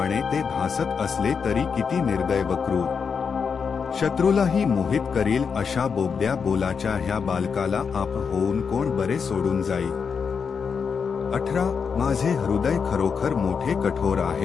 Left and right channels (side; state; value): right; quieter; 6.0 dB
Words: ते भासत असले तरी किती निर्दय व क्रूर. शत्रूलाही मोहित करील अशा बोबड्या बोलाच्या ह्या बालकाला आप होऊन कोण बरे सोडून जाईल. 18 माझे हृदय खरोखर मोठे कठोर